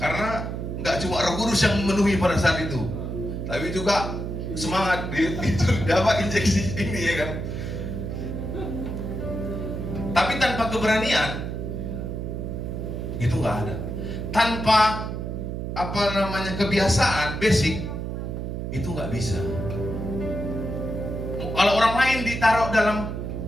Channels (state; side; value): noise; right; hum, 4 dB below the sound